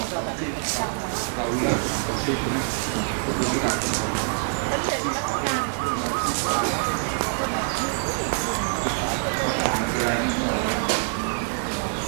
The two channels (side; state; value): left; silent; digital silence